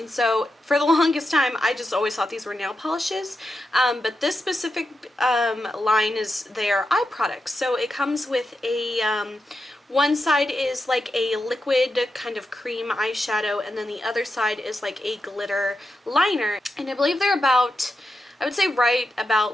so for the longest time I just always thought these were nail polishes, but this specific line is their eye products. So it comes with a one side is like a liquid kind of cream eyeshadow, and then the other side is like a glitter liner, and I believe they're about, I would say right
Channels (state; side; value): normal; both; correlation 0.88